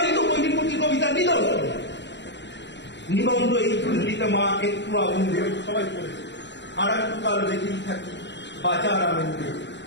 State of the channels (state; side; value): late; right; 0.52 ms